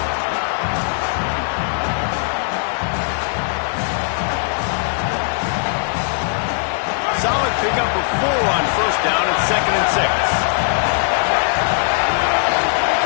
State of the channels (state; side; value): silent; right; digital silence